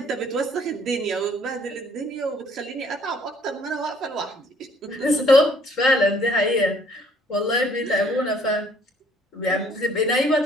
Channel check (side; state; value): both; normal; correlation 0.60